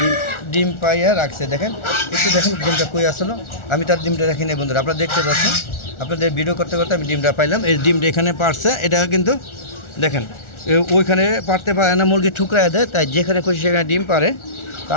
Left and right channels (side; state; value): right; late; 1.4 ms